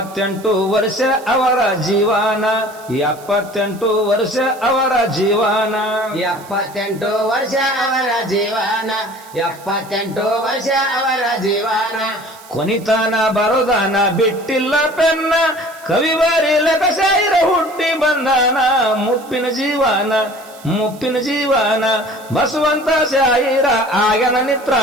ವರ್ಷ ಅವರ ಜೀವನ 78 ವರ್ಷ ಅವರ ಜೀವನ 78 ವರ್ಷ ಅವರ ಜೀವನ 78 ವರ್ಷ ಅವರ ಜೀವನ ಕೊನಿತಾನ ಬರೋದಾನ ಬಿಟ್ಟಿಲ್ಲ ಪೆನ್ನ ಕವಿ ಬರೀಲಕ ಶಾಯಿರ ಹುಟ್ಟಿ ಬಂದಾನ ಮುಪ್ಪಿನ ಜೀವನ ಮುಪ್ಪಿನ ಜೀವನ ಬಸವಂತ ಶಾಯಿರ ಆಗನ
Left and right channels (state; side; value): noise; right; hiss, 22 dB below the sound